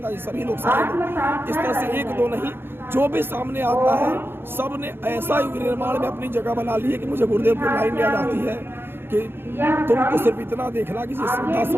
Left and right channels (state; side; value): late; left; 0.11 ms